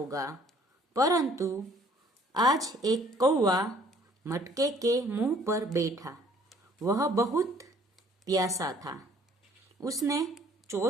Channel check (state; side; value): normal; both; correlation 0.58